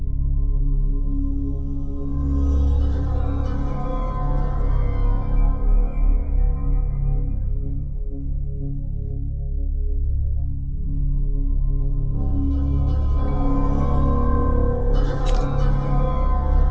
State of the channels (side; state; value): both; identical; correlation 1.00